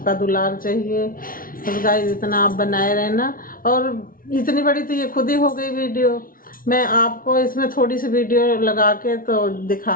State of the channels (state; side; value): late; right; 0.41 ms